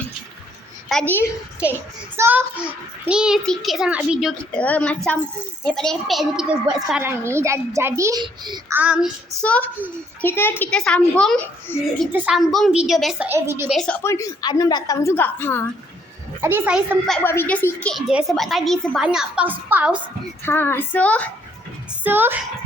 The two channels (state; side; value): normal; both; correlation 0.67